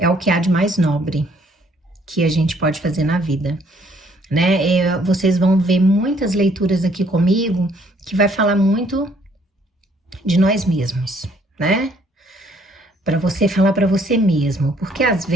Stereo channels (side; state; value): both; normal; correlation 0.64